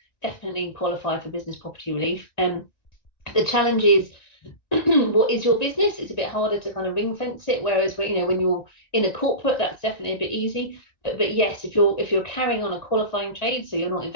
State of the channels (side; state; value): right; late; 1.9 ms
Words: definitely qualify for business property relief. The challenge is, what is your business? It's a bit harder to kind of ring fence it. Whereas when you're in a corporate, that's definitely a bit easy. But yes, if you're carrying on a qualifying trade, so you're not